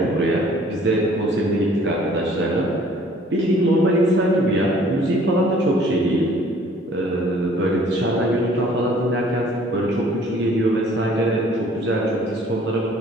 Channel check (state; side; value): normal; both; correlation 0.56